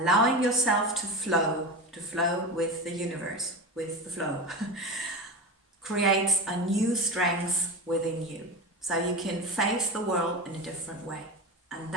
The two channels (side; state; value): both; normal; correlation 0.24